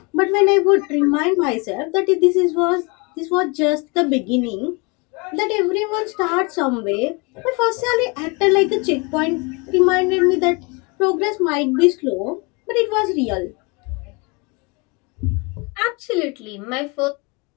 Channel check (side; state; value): right; quieter; 29.5 dB